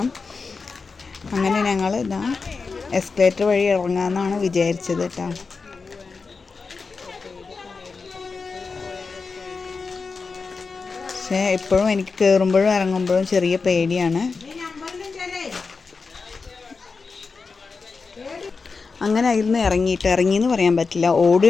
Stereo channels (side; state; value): right; quieter; 4.6 dB